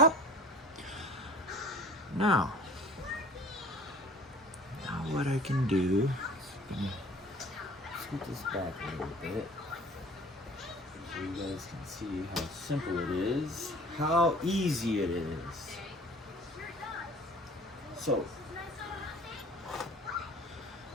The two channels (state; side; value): normal; both; correlation 0.46